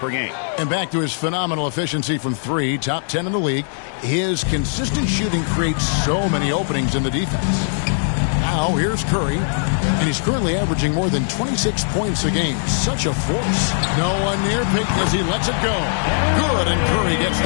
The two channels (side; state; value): right; silent; digital silence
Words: game. And back to his phenomenal efficiency from three, top 10 in the league. His consistent shooting creates so many openings in the defense. Now, here's Curry. And he's currently averaging more than 26 points a game. Such a force. No one near Payton as he lets it go. Good, and Curry gets